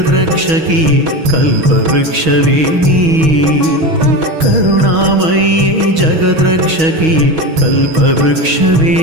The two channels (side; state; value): left; late; 6.2 ms